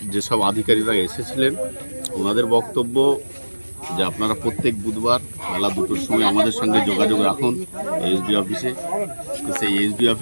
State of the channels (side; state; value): both; inverted; correlation -1.00